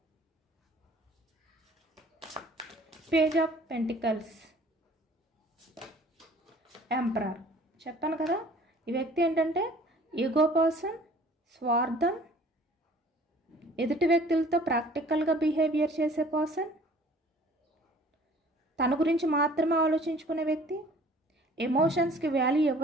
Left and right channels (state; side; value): normal; both; correlation 0.52